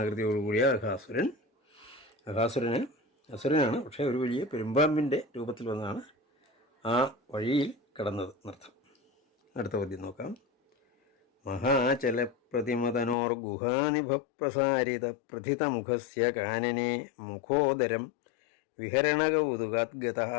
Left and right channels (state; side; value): drops out; right; at 13.2 s